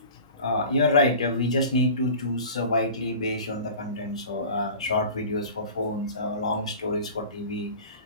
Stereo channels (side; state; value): both; inverted; correlation -0.39